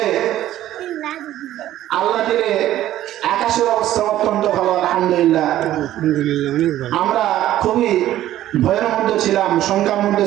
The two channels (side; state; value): left; quieter; 13.4 dB